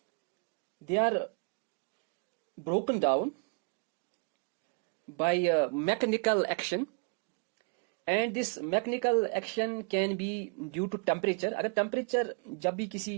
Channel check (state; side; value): quieter; left; 39.3 dB